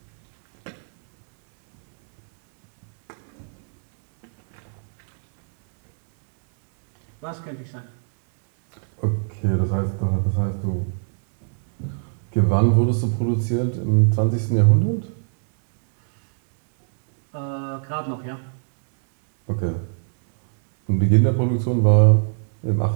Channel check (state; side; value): silent; left; 64 dB below the other